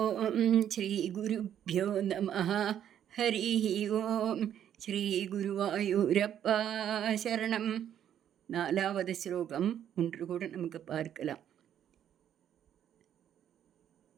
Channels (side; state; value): left; quieter; 10.0 dB